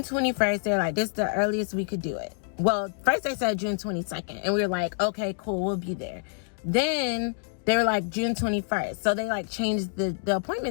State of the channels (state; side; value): silent; right; digital silence